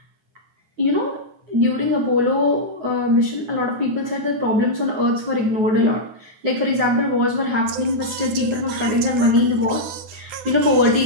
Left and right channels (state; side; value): late; left; 9.9 ms